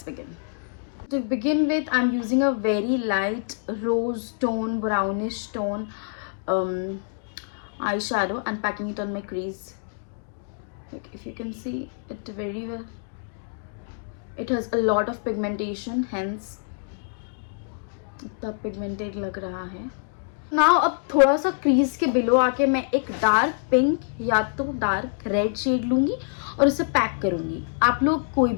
begin. To begin with, I'm using a very light rose tone, brownish tone eyeshadow and packing it on my crease. Like if you can see it very well, it has a lot of pigmentation, hence इतना pigmented लग रहा है। Now अब थोड़ा सा crease के below आके मैं एक डार्क पिंक या तो डार्क रेड शेड लूंगी और इसे पैक करूंगी। आप लोग कोई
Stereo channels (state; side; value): silent; right; digital silence